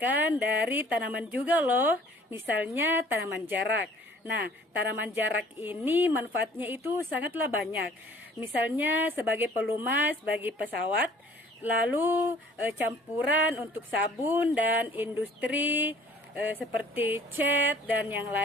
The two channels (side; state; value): both; normal; correlation 0.53